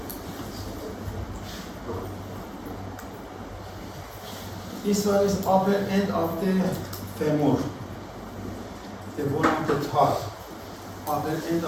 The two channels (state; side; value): identical; both; correlation 1.00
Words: This one is upper end of the femur. The bone of the thigh. Upper end